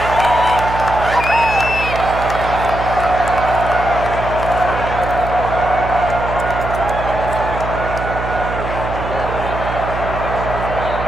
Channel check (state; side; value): noise; right; hum, 7 dB below the sound